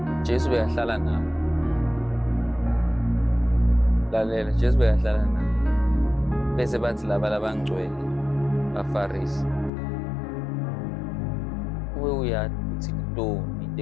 Jesu beyahlala nabo. Lalela, Jesu beyahlala nabo. Bese bathi laba labangcwele baFarisi. Uwe uyathi uthi ntoni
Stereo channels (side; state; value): right; drops out; at 9.7 s